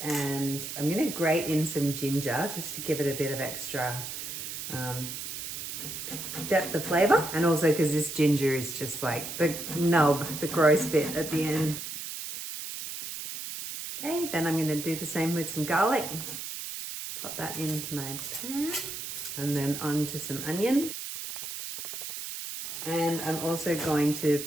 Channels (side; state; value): right; noise; hiss, 7 dB below the sound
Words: I'm gonna grate in some ginger just to give it a bit of extra depth of flavor, and also because this ginger is just like the nub, the gross bit at the end. Okay, then I'm going to do the same with some garlic. Pop that into my pan, and then onto some onion. And I'm also going to